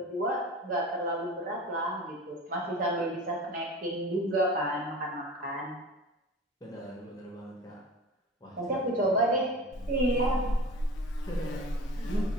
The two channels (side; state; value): both; normal; correlation 0.36